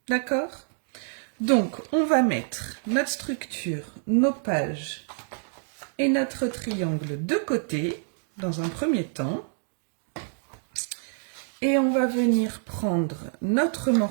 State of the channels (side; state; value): left; silent; 60 dB below the other